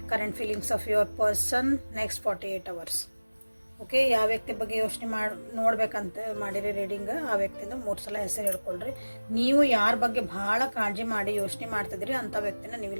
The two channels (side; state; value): both; inverted; correlation -1.00